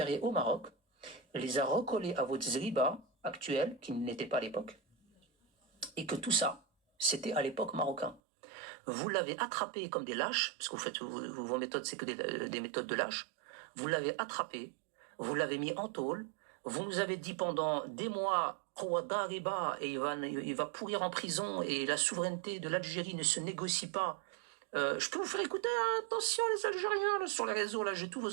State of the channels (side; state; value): left; drops out; at 8.2 s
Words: au Maroc, les a recollés à votre Zriba actuel, qui n'était pas à l'époque, et que tout ça, c'était à l'époque marocain. Vous l'avez attrapé comme des lâches, parce que vous faites vos méthodes, c'est que des méthodes de lâches. Vous l'avez attrapé, vous l'avez mis en tôle, vous nous avez dit pendant des mois, et il va pourrir en prison, et la souveraineté de l'Algérie ne se négocie pas. Je peux vous faire écouter, attention les Algériens, là, sur les réseaux, là, j'ai tous